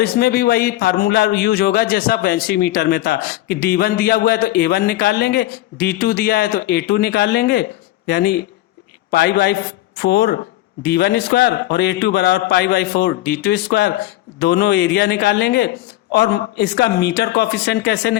इसमें भी वही फार्मूला यूज होगा जैसा बेंची मीटर में था कि D1 दिया हुआ है तो A1 निकाल लेंगे, D2 दिया है तो A2 निकाल लेंगे, यानी π/4 D1 स्क्वायर और A2 बराबर π/4 D2 स्क्वायर, दोनों एरिया निकाल लेंगे। और इसका मीटर कोफिशिएंट कैसे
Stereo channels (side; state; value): right; quieter; 15.5 dB